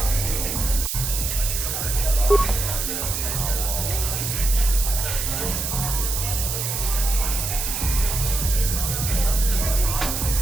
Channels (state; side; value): noise; right; hiss, 2 dB below the sound